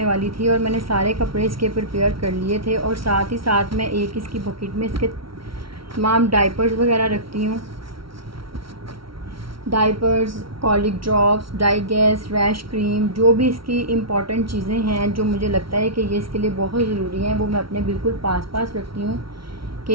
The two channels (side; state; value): left; late; 0.74 ms